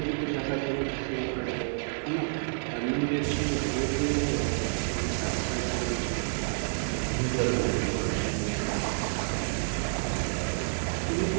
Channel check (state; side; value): silent; left; 58 dB below the other